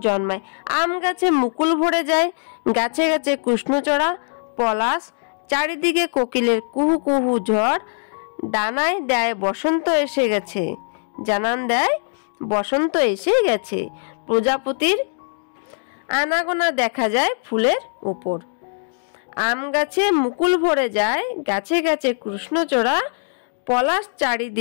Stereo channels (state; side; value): silent; right; digital silence